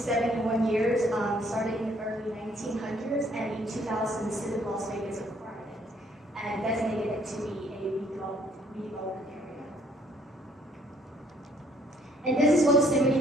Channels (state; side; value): normal; both; correlation 0.64